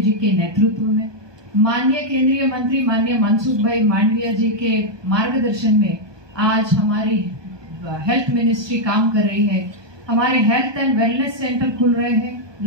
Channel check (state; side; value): late; left; 1.2 ms